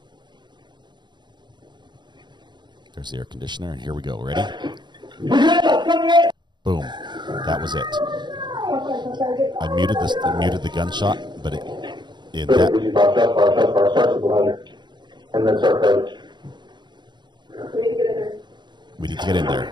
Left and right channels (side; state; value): left; late; 0.22 ms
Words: There's the air conditioner, and here we go. Ready? Boom. That was it. I muted the gunshot, but in that. And then start code. We need to get in